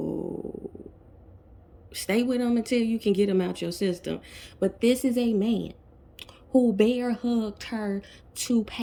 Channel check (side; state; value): both; identical; correlation 1.00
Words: stay with him until you can get him out your system. But this is a man who bear hugged her to